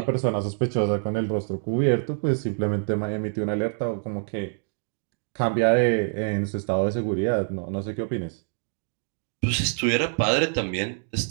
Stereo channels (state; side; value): silent; left; 61 dB below the other